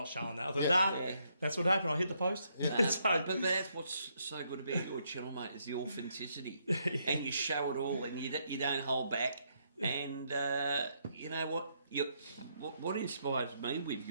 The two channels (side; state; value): both; inverted; correlation -0.75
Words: showing that. I thought that's what happened. I hit the post. But that's what's so good about your channel, mate, is the authenticity, and you show it all, and you don't hold back. And you know what inspires me with